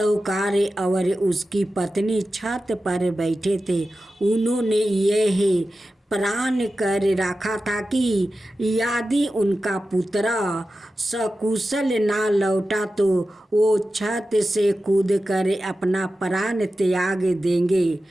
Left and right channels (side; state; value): both; normal; correlation 0.93